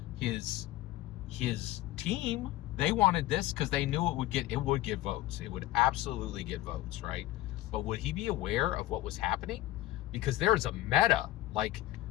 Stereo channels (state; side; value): quieter; right; 16.0 dB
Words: His team, they wanted this because they knew it would get votes. It would absolutely get votes, right? But would he be aware of what was happening? Because there's a meta,